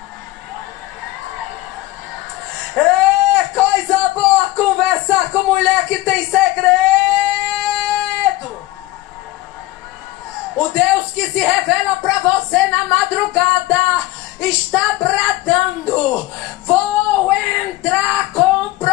É coisa boa conversar com mulher que tem segredo. O Deus que se revela para você na madrugada está bradando, vou entrar com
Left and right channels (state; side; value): quieter; right; 17.9 dB